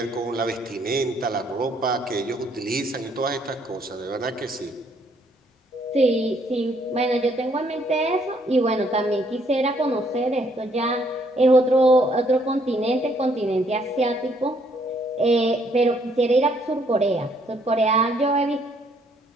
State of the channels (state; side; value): normal; both; correlation 0.68